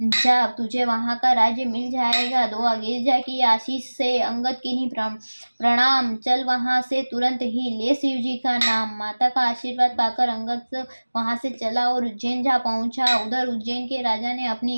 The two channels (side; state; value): both; inverted; correlation -1.00